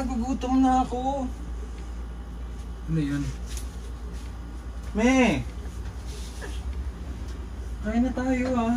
na ako. Ano yun? Me! Kain na tayo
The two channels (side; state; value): both; identical; correlation 1.00